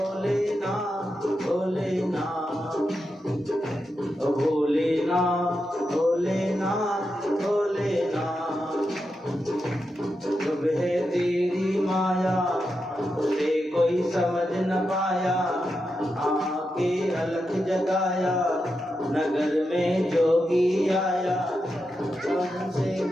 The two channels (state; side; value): normal; both; correlation 0.87